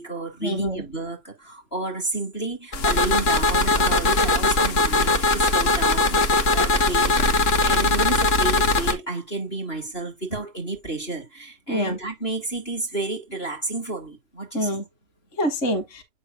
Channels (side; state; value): right; late; 3.0 ms